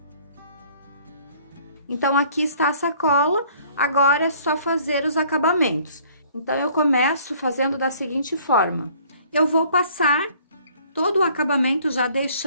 Então, aqui está a sacola, agora é só fazer os acabamentos. Então, eu começo fazendo da seguinte forma: eu vou passar todo o acabamento já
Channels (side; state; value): both; inverted; correlation -0.57